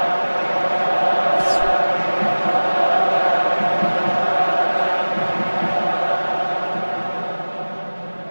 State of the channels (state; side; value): inverted; both; correlation -1.00